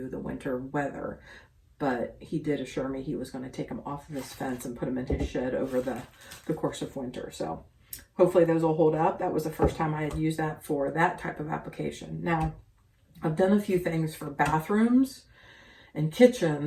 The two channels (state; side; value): identical; both; correlation 1.00